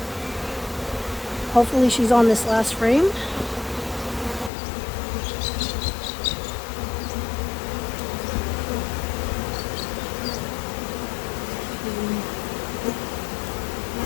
Hopefully she's on this last frame.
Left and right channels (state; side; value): drops out; right; at 4.5 s